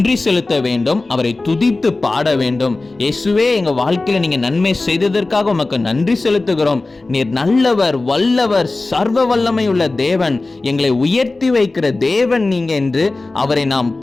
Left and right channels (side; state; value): right; quieter; 3.3 dB